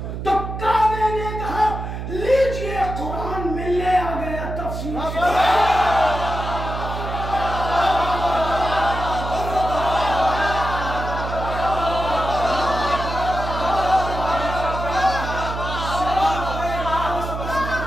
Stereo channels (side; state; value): right; noise; hum, 6 dB below the sound